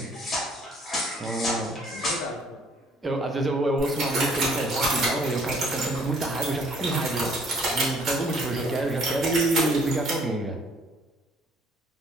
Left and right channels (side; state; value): both; normal; correlation 0.61